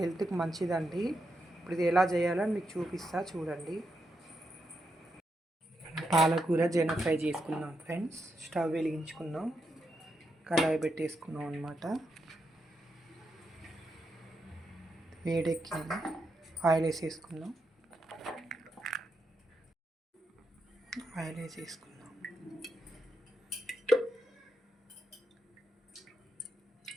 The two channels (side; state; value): both; normal; correlation 0.83